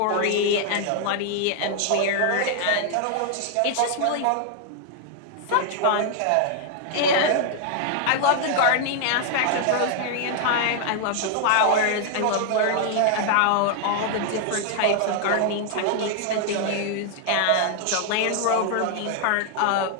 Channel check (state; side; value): different; both; correlation 0.00